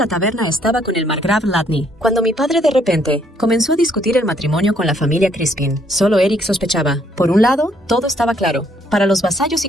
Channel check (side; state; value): both; normal; correlation 0.68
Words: taberna estaba con el margrave Chladni, cuando mi padre de repente comenzó a discutir el matrimonio con la familia Crispin. Solo Eric sospechaba. Por un lado, todo estaba claro. Para los vasallos y